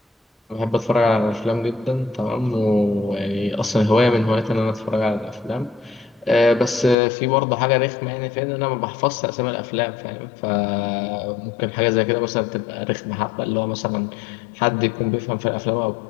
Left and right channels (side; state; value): right; drops out; at 7.0 s